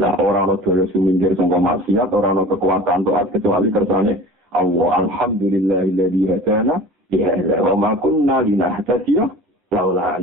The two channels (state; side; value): normal; both; correlation 0.40